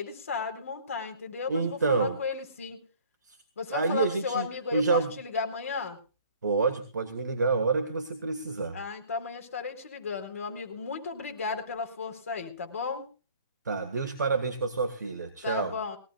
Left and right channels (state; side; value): inverted; both; correlation -0.52